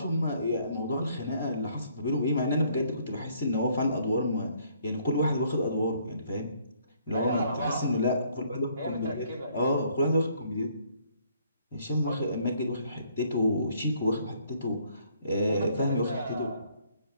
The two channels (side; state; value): both; inverted; correlation -0.65